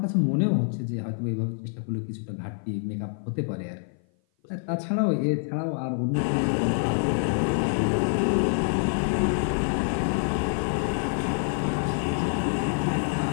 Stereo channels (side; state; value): right; silent; 56 dB below the other